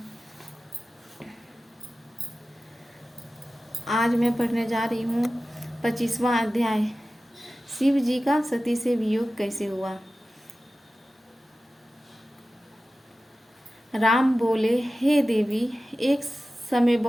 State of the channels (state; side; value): normal; both; correlation 0.95